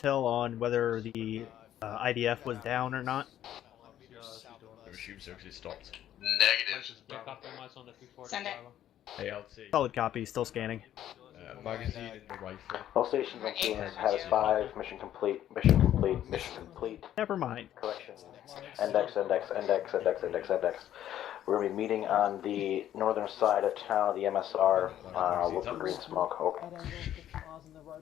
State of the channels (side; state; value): right; quieter; 11.6 dB